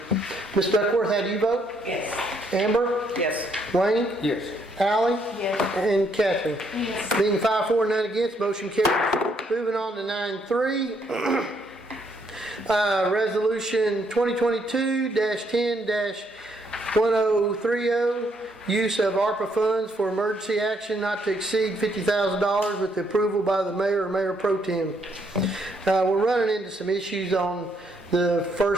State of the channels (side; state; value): both; normal; correlation 0.72